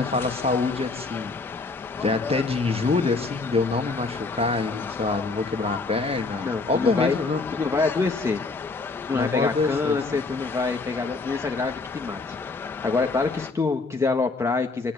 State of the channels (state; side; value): quieter; right; 3.8 dB